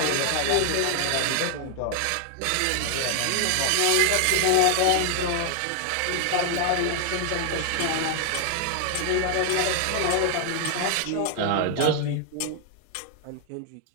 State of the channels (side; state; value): both; different; correlation 0.00